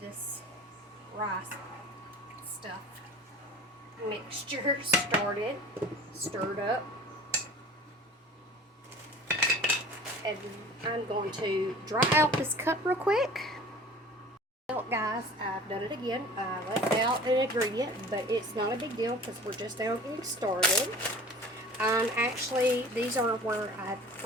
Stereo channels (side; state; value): both; normal; correlation 0.42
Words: rice stuff mixture stirred up. And I'm going to dry out this cup real quick. Well, guys, I've done it again. I left out an ingredient, but it's not a big deal because we're just now getting started. Actually, these are where I